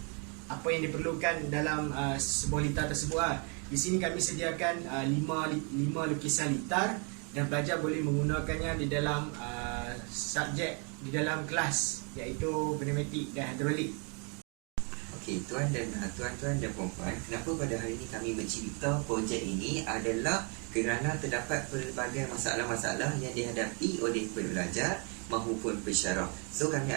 apa yang diperlukan dalam sebuah litar tersebut. Di sini kami sediakan 5 lukisan litar dan pelajar boleh menggunakannya di dalam subjek di dalam kelas, iaitu pneumatik dan hidrolik. Okey, tuan-tuan dan puan-puan, kenapa pada hari ini kami mencipta projek ini adalah kerana terdapat pelbagai masalah-masalah yang dihadapi oleh pelajar maupun pensyarah. So kami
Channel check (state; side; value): quieter; left; 35.8 dB